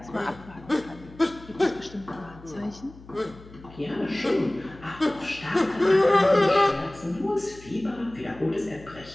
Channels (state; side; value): noise; left; hum, 20 dB below the sound